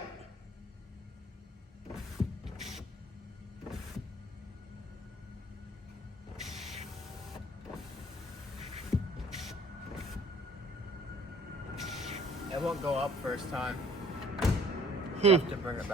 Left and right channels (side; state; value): both; normal; correlation 0.55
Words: It won't go up first time. You have to bring it